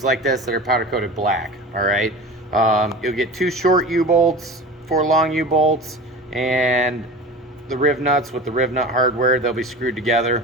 like this that are powder coated black. All right, you'll get 2 short U-bolts, 4 long U-bolts, and the riv nuts with the riv nut hardware. They'll be screwed together,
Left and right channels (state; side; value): normal; both; correlation 0.34